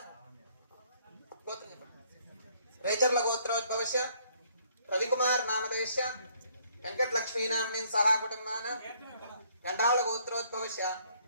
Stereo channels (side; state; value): both; inverted; correlation -0.65